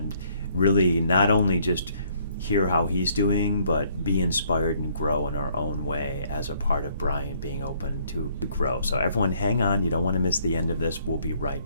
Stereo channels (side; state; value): both; inverted; correlation -0.65